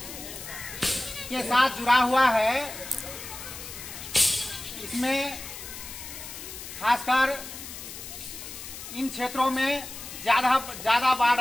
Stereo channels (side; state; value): left; noise; hiss, 11 dB below the sound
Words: के साथ जुड़ा हुआ है, इसमें खासकर इन क्षेत्रों में ज्यादा